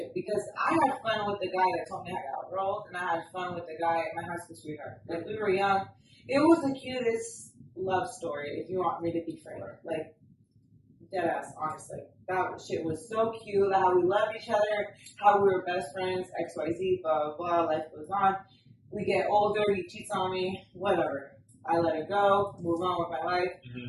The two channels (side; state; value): both; identical; correlation 1.00